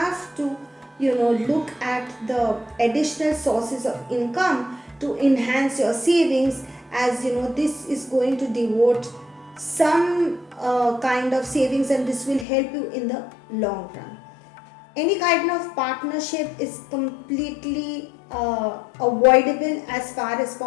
to look at the additional sources of income to enhance your savings, as this is going to devote some kind of savings, and this will help you in the long run. Any kind of partnership is completely avoidable as far as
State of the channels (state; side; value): drops out; right; at 12.5 s